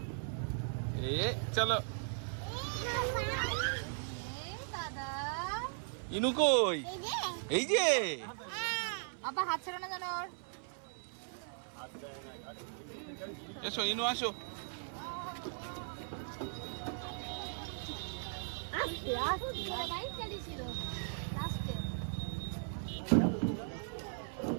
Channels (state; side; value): silent; left; 52 dB below the other